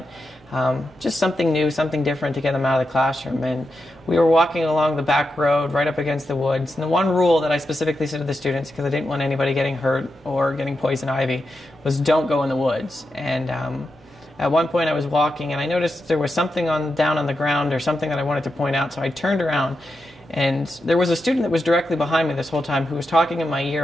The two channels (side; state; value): both; normal; correlation 0.87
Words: just something new, something different to get them out of the classroom. And we were walking along the back road right up against the woods, and the one rule that I specifically said to the students, because I didn't want anybody getting hurt or getting poison ivy, was don't go in the woods. And at one point I was walking and I noticed there was something down on the ground or something that I wanted to point out, so I turned around and there was a student that was directly behind me this whole time who was talking in my ear